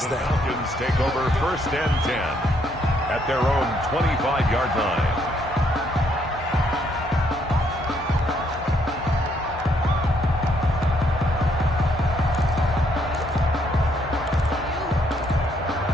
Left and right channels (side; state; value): both; normal; correlation 0.71